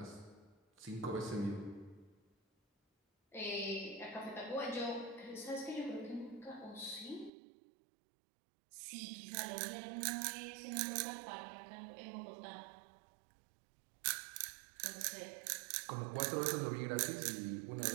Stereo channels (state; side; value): drops out; left; at 7.3 s